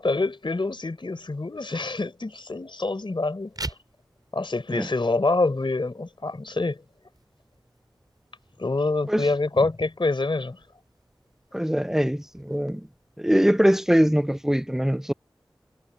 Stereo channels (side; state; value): both; normal; correlation 0.89